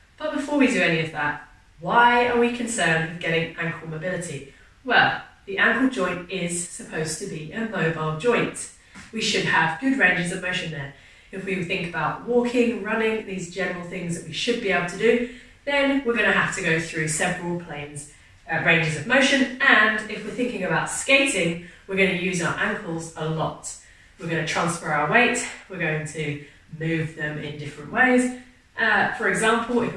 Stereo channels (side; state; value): both; identical; correlation 1.00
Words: But before we do any of that, why are we concerned with getting ankle mobility? Well, the ankle joint is supposed to be a mobile joint. We should have good ranges of motion there. If we think about walking, running, these general things that we should be able to do, then we're going to have to go through several ranges of motion. And if we're thinking about skating, we're going to use our ankles a lot. We're going to transfer our weight, we're going to move them in different ways. For example,